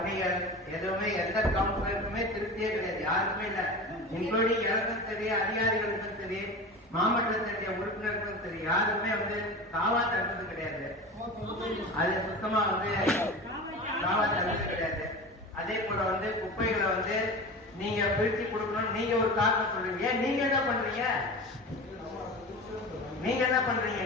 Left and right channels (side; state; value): both; normal; correlation 0.31